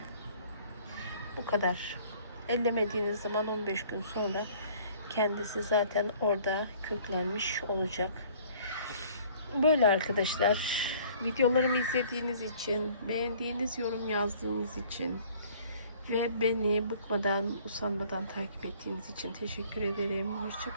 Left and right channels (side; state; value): both; inverted; correlation -0.54